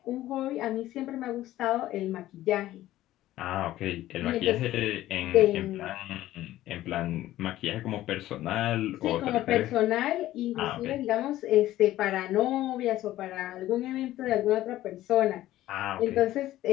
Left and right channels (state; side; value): quieter; right; 14.7 dB